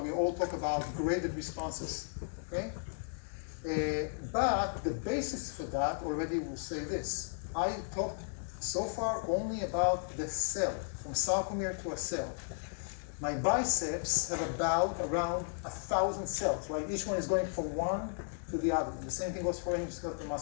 all talk about graded responses. Okay? But the basis for that already will say this. I talked so far only about the cell, from sarcomere to a cell. My biceps have about around 1,000 cells, right? Each one is going from one to the other. The same thing goes for any skeletal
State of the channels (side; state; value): right; silent; digital silence